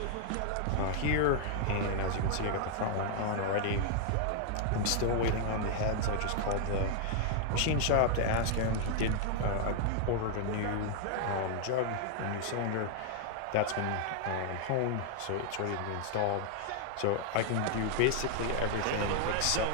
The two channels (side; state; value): both; different; correlation 0.00